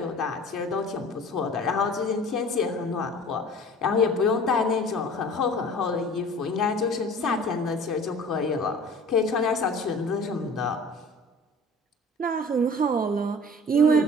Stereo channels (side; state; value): both; normal; correlation 0.45